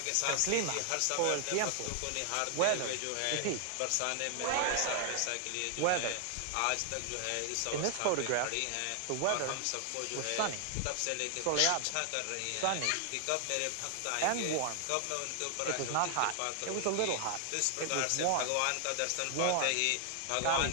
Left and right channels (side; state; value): both; different; correlation 0.00